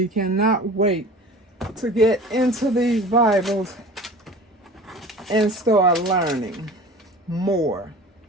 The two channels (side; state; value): both; normal; correlation 0.40